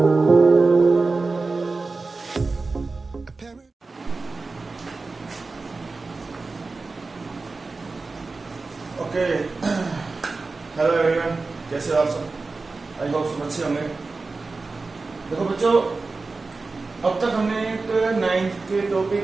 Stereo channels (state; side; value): quieter; left; 3.8 dB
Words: हेलो एवरीवन, कैसे हो आप सब? आई होप सब अच्छे होंगे। देखो बच्चों, अब तक हमने एक 9th के टॉपिक